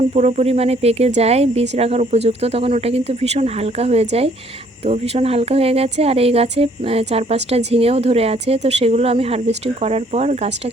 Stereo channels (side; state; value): both; normal; correlation 0.62